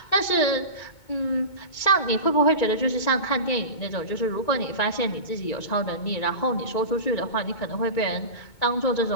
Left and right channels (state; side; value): late; right; 2.2 ms